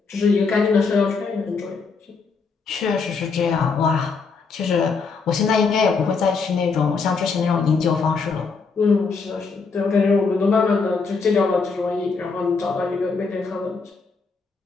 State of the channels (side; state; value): right; quieter; 4.8 dB